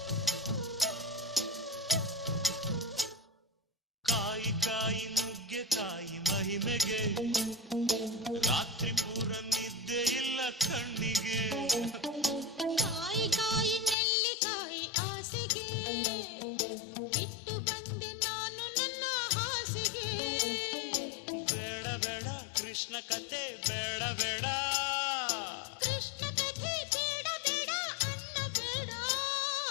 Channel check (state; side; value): drops out; right; at 14.0 s